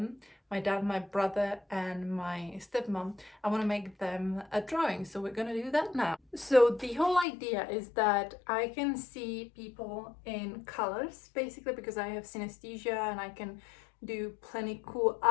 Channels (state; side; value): drops out; right; at 7.2 s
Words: my dad, my brother, and my stepmom, I want to make them a drawing. So we're gonna do that now. So the whole idea is that I can see people in colors, basically, because I have synesthesia and I can do plenty cool